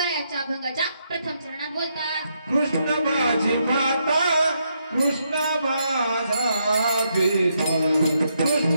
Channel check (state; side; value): inverted; both; correlation -0.78